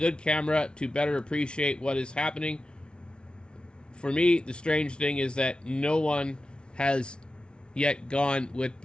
camera to better appreciate what is happening. For me, the strange thing is that no one has yet gone with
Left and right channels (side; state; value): right; late; 0.056 ms